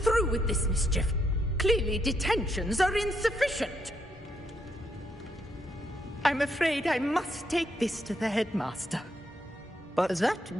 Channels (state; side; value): normal; both; correlation 0.77